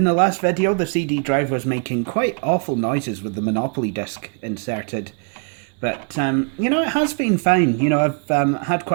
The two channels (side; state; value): left; quieter; 38.6 dB